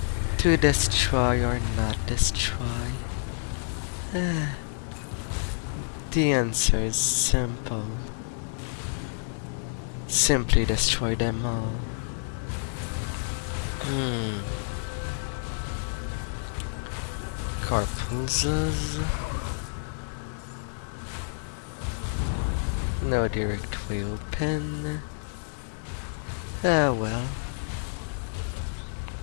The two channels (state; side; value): silent; right; digital silence